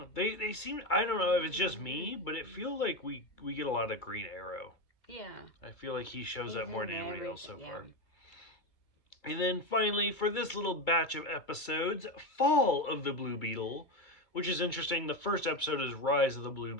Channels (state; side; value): late; right; 2.3 ms